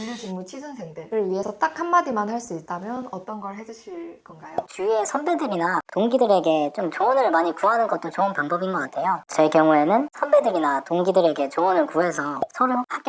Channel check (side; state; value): both; identical; correlation 1.00